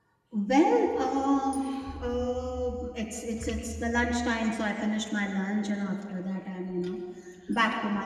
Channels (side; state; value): both; identical; correlation 1.00